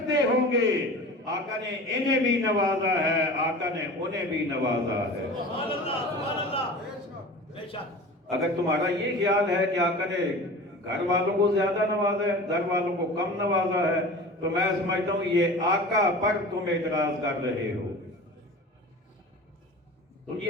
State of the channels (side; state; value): both; normal; correlation 0.37